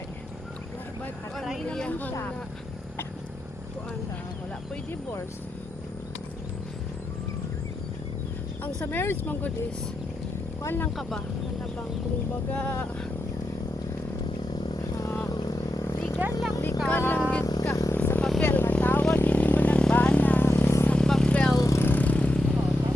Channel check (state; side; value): normal; both; correlation 0.86